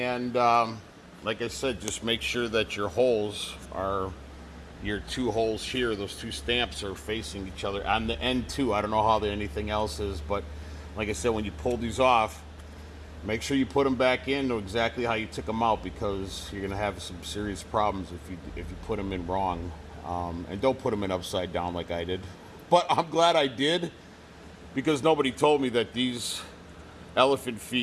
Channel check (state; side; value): identical; both; correlation 1.00